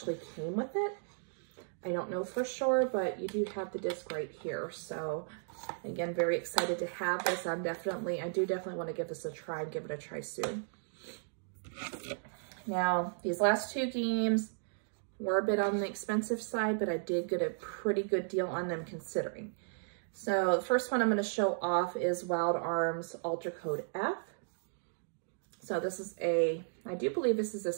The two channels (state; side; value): silent; left; digital silence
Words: came with it. I don't know for sure, but you do have the disc right here. So again, very excited to have this. I do definitely want to give this a try and give it a try soon. Now, these last 2 games were a bit on the expensive side, but I did get a pretty good deal on them considering. So the first one I'm going to show off is Wild Arms Ultra Code F. So this is I do believe this is a